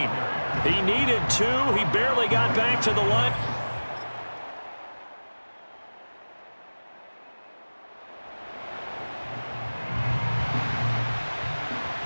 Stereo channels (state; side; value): inverted; both; correlation -1.00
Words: He needed 2. He barely got back to the line.